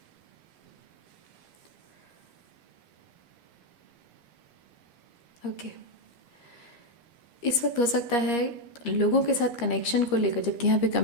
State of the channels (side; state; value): right; late; 13 ms